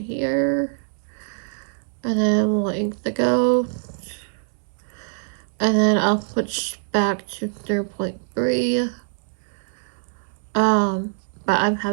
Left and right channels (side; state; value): left; silent; digital silence